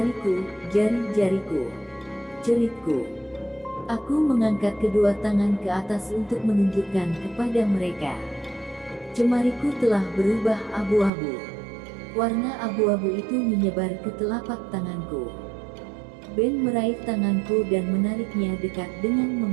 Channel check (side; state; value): left; drops out; at 11.1 s